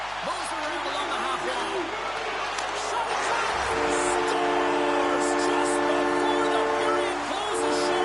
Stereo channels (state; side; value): noise; left; hum, 22 dB below the sound